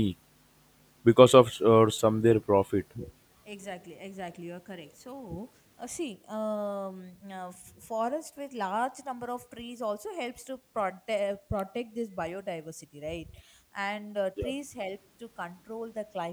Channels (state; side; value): identical; both; correlation 1.00